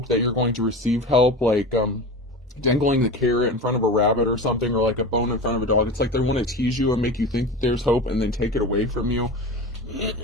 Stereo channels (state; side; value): normal; both; correlation 0.29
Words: that you're going to receive help, like dangling the carrot in front of a rabbit or something, or like a bone in front of a dog. It's like they want to tease you and make you think that there's hope and then take it away from you.